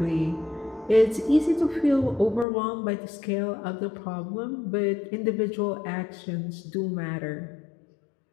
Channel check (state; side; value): drops out; right; at 2.5 s